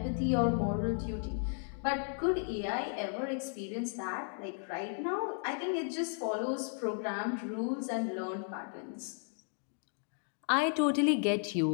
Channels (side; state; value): right; silent; 55 dB below the other